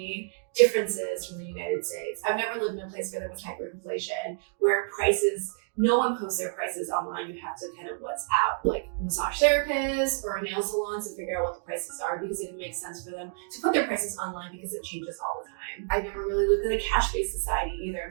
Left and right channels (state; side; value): silent; left; digital silence